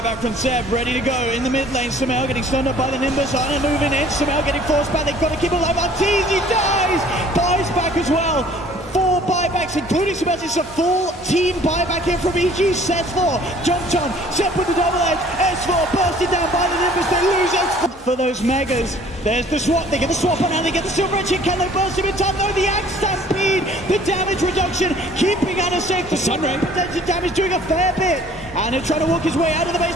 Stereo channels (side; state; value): both; normal; correlation 0.54